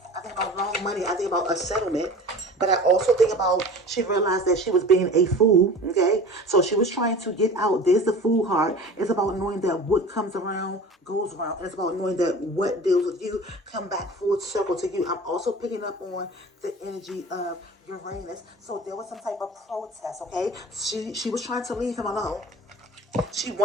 I think about long money. I think about a settlement. But I also think about, she realized that she was being a fool, okay? So she was trying to get out. There's the Fool card. It's about knowing that what comes around goes around. And it's about knowing that what deals with you come back full circle to you. I'm also picking up on the energy of Uranus. So there was some type of protest, okay? She was trying to leave him alone. She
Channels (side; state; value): both; normal; correlation 0.39